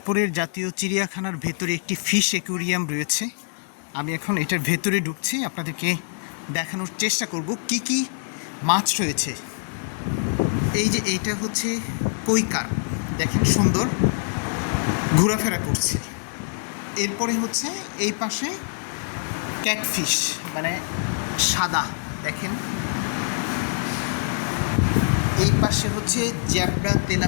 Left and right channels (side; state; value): right; silent; 62 dB below the other